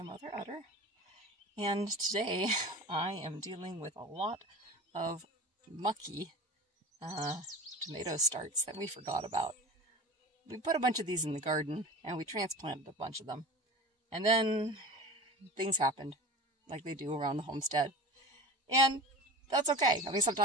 Mother Udder. And today I am dealing with a lot of mucky tomato starts that we forgot about. We put a bunch of these in the garden and we transplanted a bunch of them. And then things happened like they do around the homestead. And that's okay. I mean,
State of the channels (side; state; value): both; normal; correlation 0.35